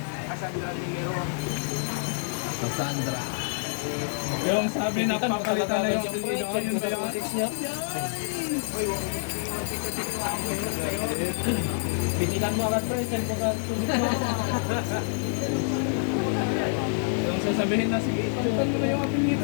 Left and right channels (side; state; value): right; silent; 60 dB below the other